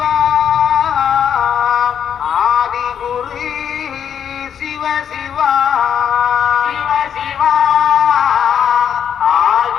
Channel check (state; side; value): quieter; right; 8.5 dB